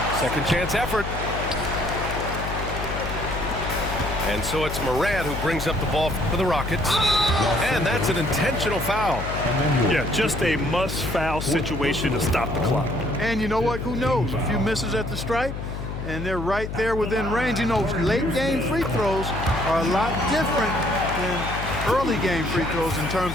Second chance effort. And so it's Morant who brings up the ball for the Rockets. And that's an intentional foul. Yeah, just a must-foul situation to stop the clock. And you know what? Who knows? A few misses at the stripe, and they're right there within range. You know, late-game free throws are a lot different than early-game free throws in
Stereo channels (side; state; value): left; noise; hum, 6 dB below the sound